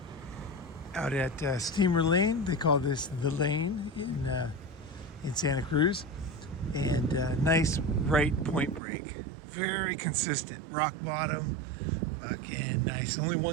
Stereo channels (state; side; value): drops out; left; at 8.8 s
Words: out at Steamer Lane. They call this the Lane in Santa Cruz. And nice right point break. Very consistent. Rock bottom. Fucking nice. Only